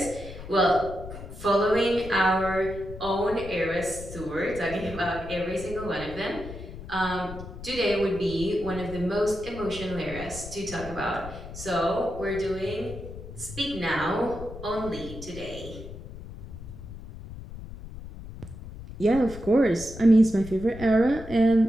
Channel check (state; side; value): noise; left; rumble, 12 dB below the sound